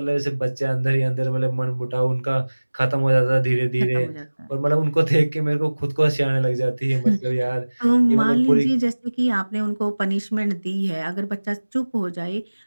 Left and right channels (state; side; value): inverted; both; correlation -1.00